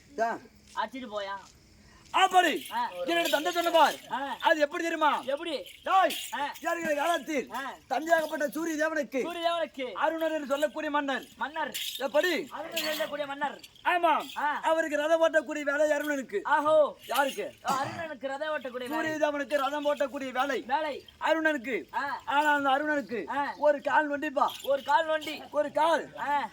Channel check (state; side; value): identical; both; correlation 1.00